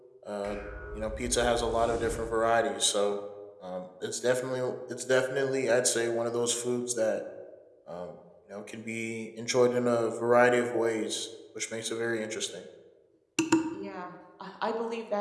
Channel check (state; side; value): identical; both; correlation 1.00